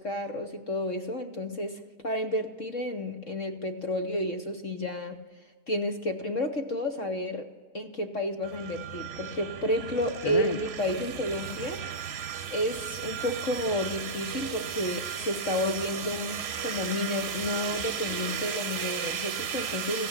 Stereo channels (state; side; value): late; right; 3.0 ms